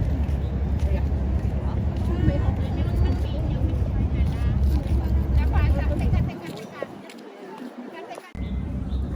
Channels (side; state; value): both; identical; correlation 1.00